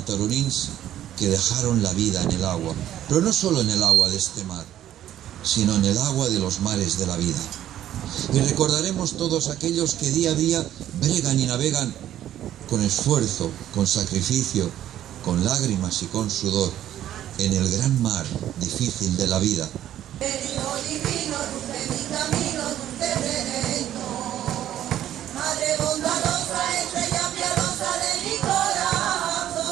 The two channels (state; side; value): quieter; left; 11.9 dB